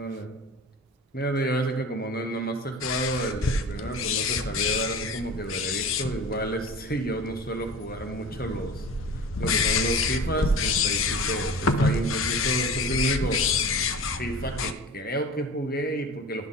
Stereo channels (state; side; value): normal; both; correlation 0.36